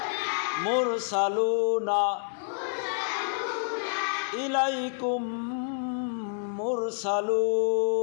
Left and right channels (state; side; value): silent; right; digital silence